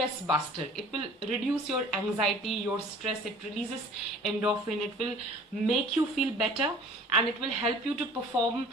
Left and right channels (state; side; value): normal; both; correlation 0.48